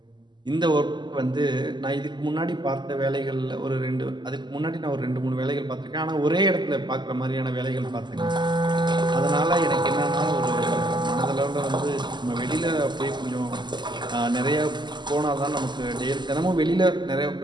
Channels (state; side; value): late; left; 0.21 ms